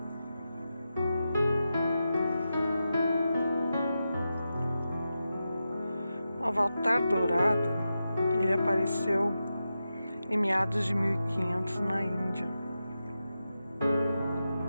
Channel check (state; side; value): inverted; both; correlation -0.90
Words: O Avatar Dourado, ele apareceu em meados de 1500 na Índia,